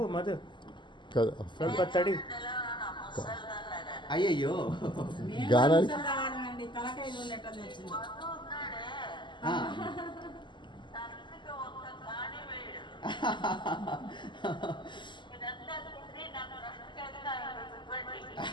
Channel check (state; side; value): late; right; 0.22 ms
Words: మధు, కదా ಸ್ವಲ್ಪ తడి. అయ్యయ్యో గానానికి